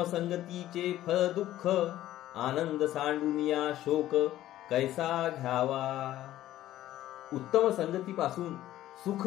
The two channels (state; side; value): quieter; right; 13.8 dB